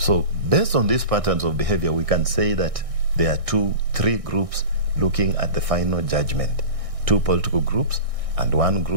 based on these patterns of behavior, we can say that there are 3 groups looking at the final judgment. 2 political groups and 1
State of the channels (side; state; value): left; late; 1.6 ms